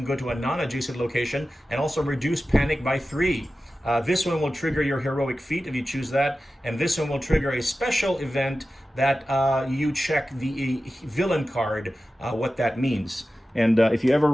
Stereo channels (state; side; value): normal; both; correlation 0.94